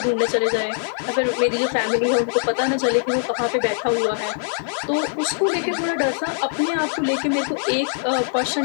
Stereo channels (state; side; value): silent; right; digital silence